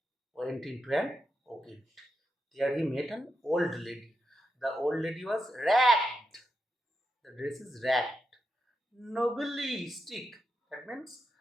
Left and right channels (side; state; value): both; normal; correlation 0.86